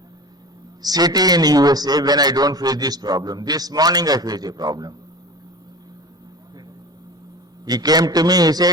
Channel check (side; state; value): both; normal; correlation 0.34